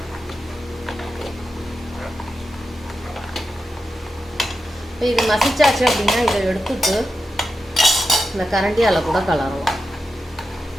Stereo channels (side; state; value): both; normal; correlation 0.89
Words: இது மசிச்சாச்சு அப்படின்னா இதை எடுத்துட்டு இந்த கரண்டியால் கூட கலரலாம்.